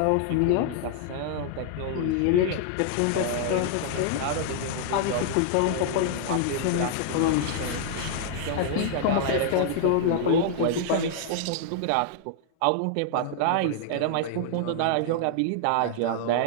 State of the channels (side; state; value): both; different; correlation -0.01